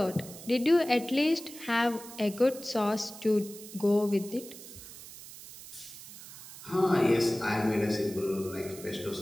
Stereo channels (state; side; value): noise; right; hiss, 15 dB below the sound